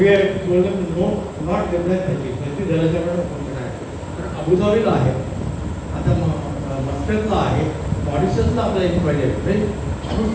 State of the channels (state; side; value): identical; both; correlation 1.00